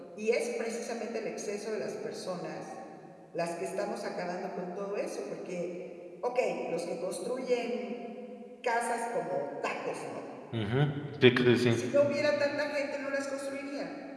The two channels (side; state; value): both; identical; correlation 1.00